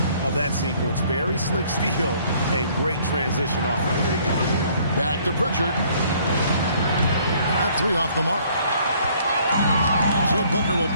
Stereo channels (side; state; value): both; inverted; correlation -0.61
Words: of that sequence. Very slick steal and great transition off. Back to Pritchard. That 3 off the mark. And so Booker will